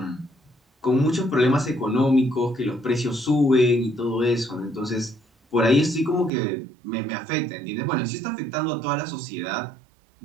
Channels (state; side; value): drops out; left; at 6.3 s